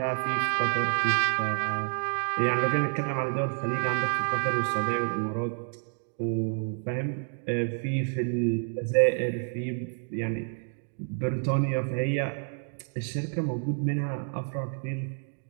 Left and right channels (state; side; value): silent; left; 59 dB below the other